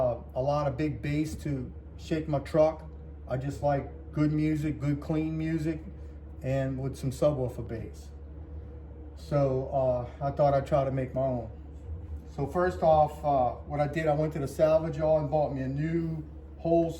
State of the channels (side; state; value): both; identical; correlation 1.00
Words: lot of big bass to shake my truck. I just like good music, good clean music, and with some subwoofer bass. So I thought I'd try to make my own. So first off, what I did, I went to the salvage yard and bought me a new whole